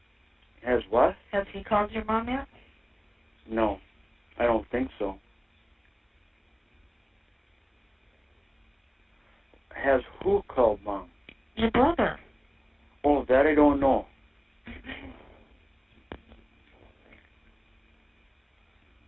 Has what? Has he called your mom yet? No, I don't think so. Has who called Mom? Your brother. Oh, that I don't know.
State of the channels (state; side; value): identical; both; correlation 1.00